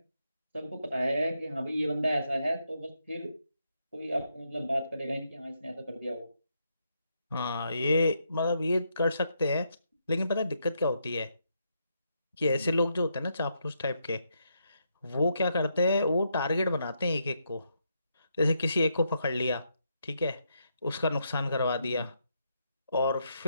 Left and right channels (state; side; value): inverted; both; correlation -0.79